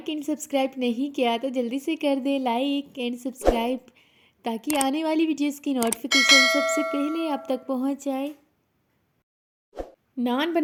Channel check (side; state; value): both; identical; correlation 1.00